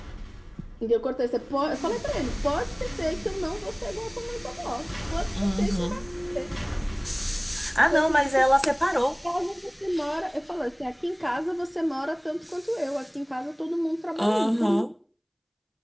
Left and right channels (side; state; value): both; identical; correlation 1.00